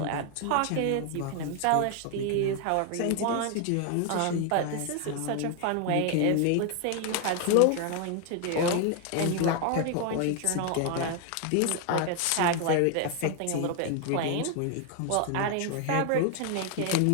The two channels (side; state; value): both; different; correlation 0.01